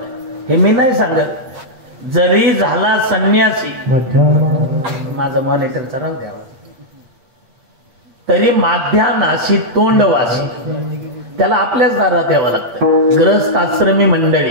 हे मी नाही सांगत. जरी झाला संन्यासी, माझा मॉनिटरचा राव द्यावा, तरी माध्यानाशी तोंडवासी त्याला आपल्याच दारात यावं लागतं. ग्रहस्थ आश्रमी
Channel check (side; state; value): left; late; 8.5 ms